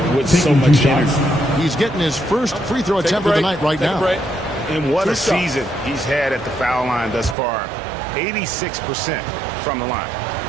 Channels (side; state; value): left; drops out; at 7.4 s